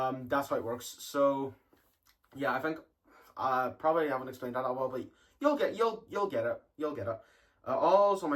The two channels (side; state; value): both; identical; correlation 1.00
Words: how it works. So, yeah, I think probably haven't explained that well, but you'll get it. All's on